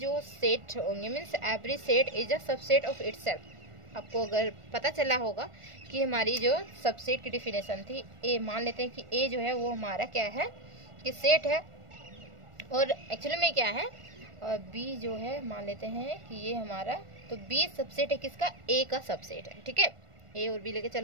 सेट होंगे means every set is a subset of itself. आपको अगर पता चला होगा कि हमारी जो सबसेट की डेफिनेशन थी, ए मान लेते हैं कि ए जो है वो हमारा क्या है कि सेट है, और एक्चुअली में क्या है, और बी जो है मान लेते हैं कि ये हमारा, तो बी सबसेट है किसका, ए का सबसेट है, ठीक है। ए और बी लेके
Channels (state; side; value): late; left; 1.4 ms